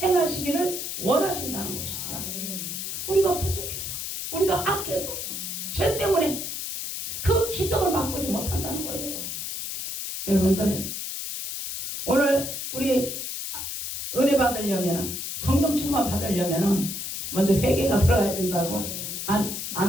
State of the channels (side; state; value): left; noise; hiss, 5 dB below the sound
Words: 행하시기를 원하신다는 것이죠. 우리가 부족해서 우리가 악해서 죄 때문에 그 기적을 맛보지 못한다는 거예요. 여러분들 오늘 우리 은혜 받으려면 성령 충만 받으려면 먼저 회개가 들어가야 된다고